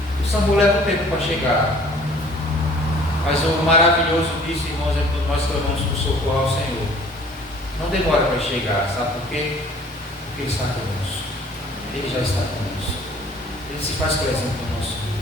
O SAMU leva um tempo para chegar. Mas o maravilhoso disso, irmãos, é quando nós clamamos por socorro ao Senhor. Não demora para chegar, sabe por quê? Porque Ele está conosco. Ele já está conosco. Ele se faz presente no nosso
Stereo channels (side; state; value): both; normal; correlation 0.53